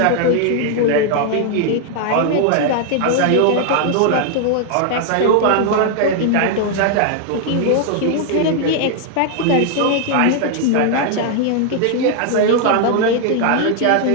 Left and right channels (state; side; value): different; both; correlation 0.00